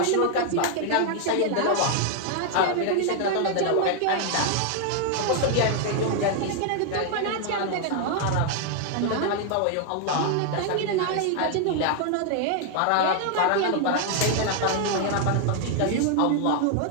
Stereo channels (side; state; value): both; different; correlation 0.00